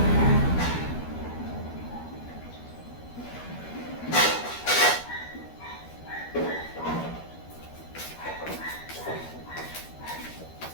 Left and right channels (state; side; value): late; right; 12 ms